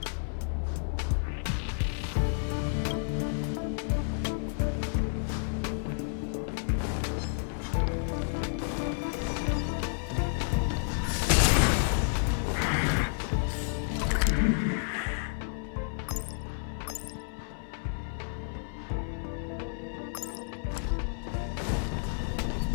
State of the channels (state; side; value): silent; right; 56 dB below the other